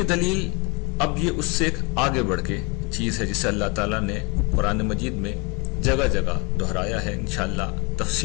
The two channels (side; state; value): right; quieter; 29.6 dB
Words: دلیل اب یہ اس سے ایک آگے بڑھ کے چیز ہے جسے اللہ تعالیٰ نے قرآن مجید میں جگہ جگہ دہرایا ہے۔ انشاءاللہ